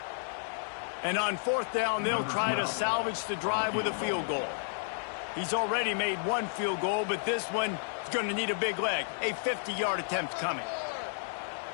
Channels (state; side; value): silent; right; digital silence